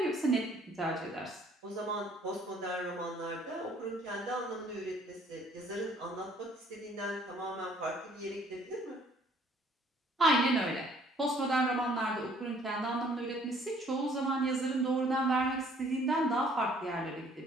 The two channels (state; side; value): normal; both; correlation 0.59